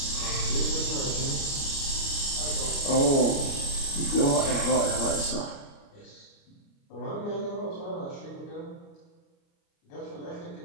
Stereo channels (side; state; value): right; late; 29 ms